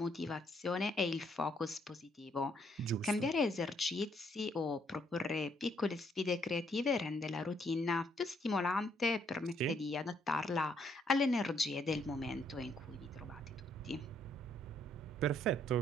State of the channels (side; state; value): both; normal; correlation 0.70